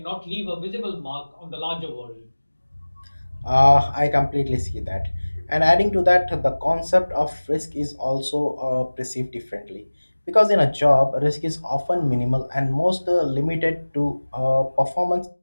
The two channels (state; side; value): inverted; both; correlation -1.00